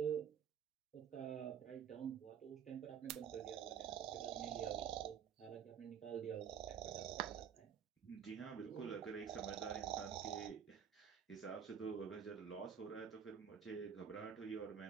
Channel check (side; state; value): left; quieter; 8.0 dB